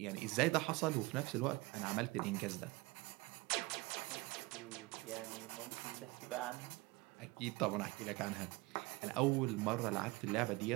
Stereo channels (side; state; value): left; quieter; 22.6 dB